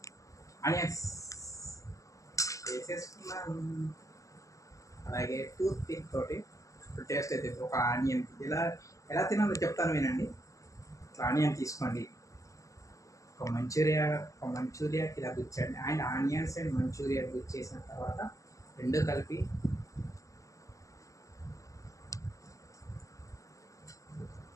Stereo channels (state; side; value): late; right; 0.16 ms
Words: ఆనియన్స్ వేసేసుకున్నాను. అలాగే టూత్ పిక్ తోటి సూపర్ టేస్ట్ అయితే ఒక ఆనియన్ ఎలా తినాలో చెప్తాను వినండి. ఇట్లా ఆనియన్ తీసుకోండి, ఒక మంచూరియాకి ఇలా గుచ్చండి. అండ్ ఆనియన్స్ అండ్ మంచూరియా గుచ్చేసిన తర్వాత రెండు కలిపి